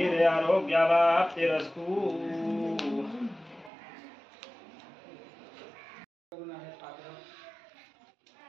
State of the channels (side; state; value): left; drops out; at 3.7 s